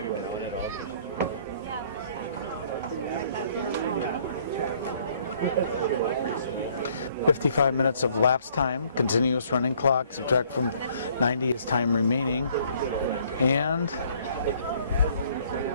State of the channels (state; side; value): inverted; both; correlation -0.62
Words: 55 minutes of lapse time, continuous running clock, subtract from 90 is time remaining. And